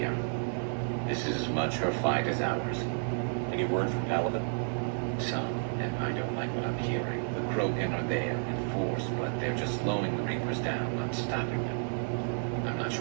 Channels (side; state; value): left; silent; digital silence